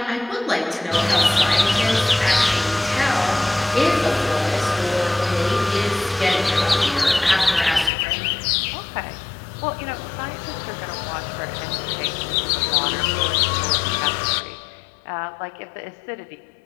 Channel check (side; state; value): right; drops out; at 7.9 s